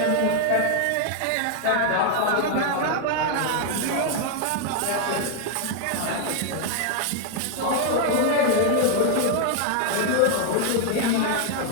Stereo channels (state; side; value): different; both; correlation 0.00